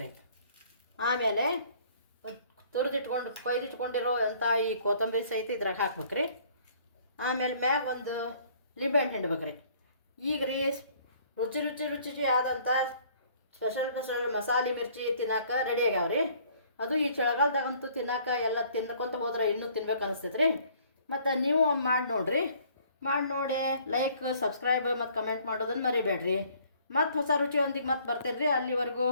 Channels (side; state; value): both; inverted; correlation -0.58